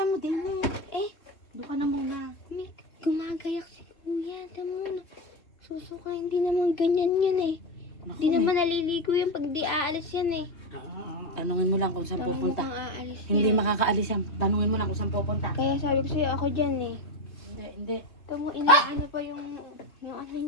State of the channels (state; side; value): late; right; 3.1 ms